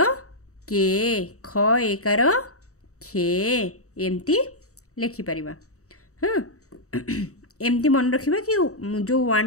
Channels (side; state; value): right; late; 0.65 ms